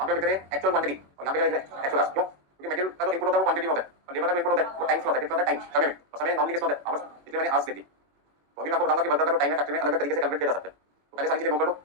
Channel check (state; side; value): late; left; 21 ms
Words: पे लिख रहे हैं एक्चुअल क्वांटिटी और यहाँ पे लिख रहे हैं एक्चुअल क्यों? क्योंकि मटेरियल का जो इनपुट होता है वो क्वांटिटी में होता है और लेबर का जो इनपुट होता है वो टाइम में होता है। कितना होता है? टाइम, समय में। और समय नॉर्मली किसमें होता है? आवर्स, इसलिए मैंने आवर्स लिखी। तो अभी मैं आपको बताऊंगा कि वर्कर का जो टाइम है फैक्ट्री में अलग अलग तरीके से कैलकुलेट किया जा सकता है। तो पहले सारी चीजें नोट कर लो